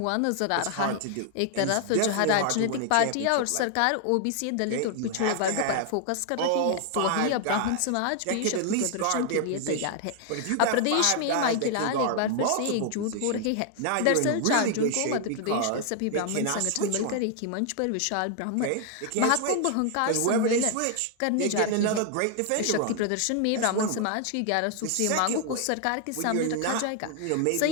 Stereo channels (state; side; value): different; both; correlation 0.00